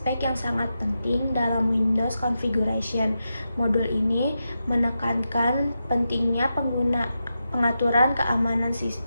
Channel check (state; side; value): inverted; both; correlation -0.88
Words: yang sangat penting dalam Windows Configuration. Modul ini menekankan pentingnya pengaturan keamanan